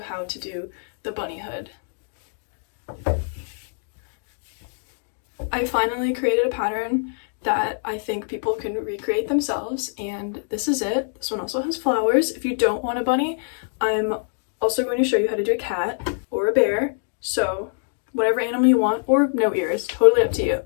how to do the bunny hood. I finally created a pattern that I think people can recreate themselves, and this is it. This one also has flowers. If you don't want a bunny, I'm also going to show you how to do a cat or a bear, so whatever animal you want, or no ears, totally up to you.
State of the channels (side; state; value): right; silent; digital silence